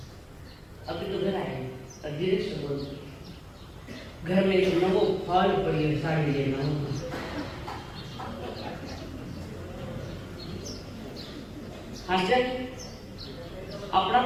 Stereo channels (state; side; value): identical; both; correlation 1.00